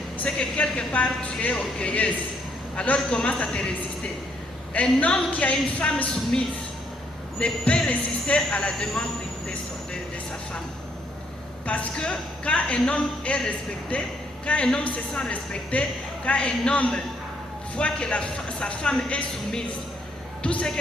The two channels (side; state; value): both; normal; correlation 0.71